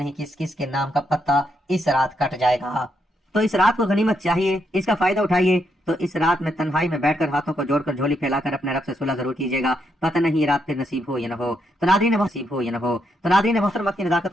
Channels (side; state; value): both; normal; correlation 0.79